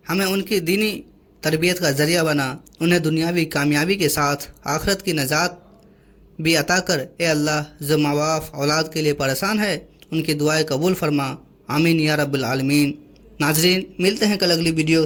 ہمیں ان کی دینی تربیت کا ذریعہ بنا، انہیں دنیاوی کامیابی کے ساتھ آخرت کی نجات بھی عطا کر۔ اے اللہ جو ماں باپ اولاد کے لیے پریشان ہے ان کی دعائیں قبول فرما، آمین یا رب العالمین۔ ناظرین ملتے ہیں کل اگلی ویڈیو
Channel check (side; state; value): both; identical; correlation 1.00